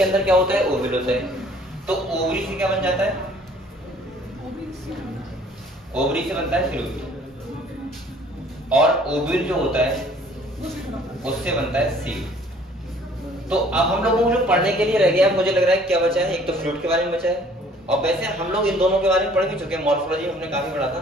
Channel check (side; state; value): both; normal; correlation 0.56